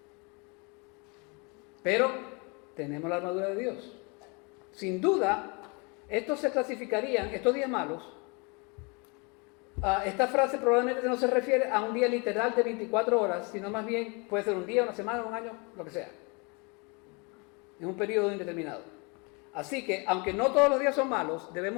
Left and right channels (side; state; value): right; quieter; 30.8 dB